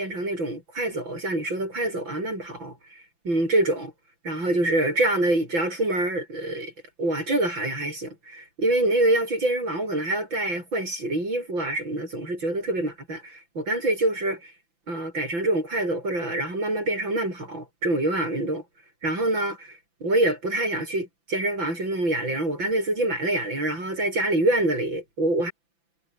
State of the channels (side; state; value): left; late; 5.9 ms